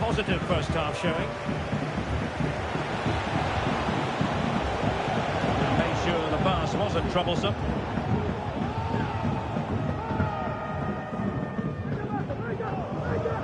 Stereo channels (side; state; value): both; identical; correlation 1.00